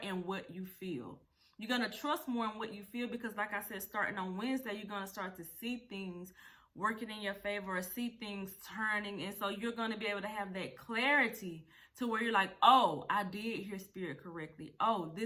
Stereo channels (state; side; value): identical; both; correlation 1.00